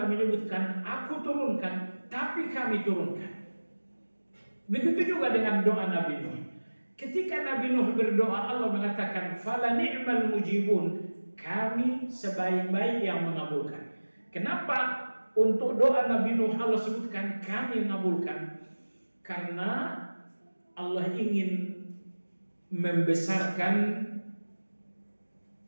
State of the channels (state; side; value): inverted; both; correlation -1.00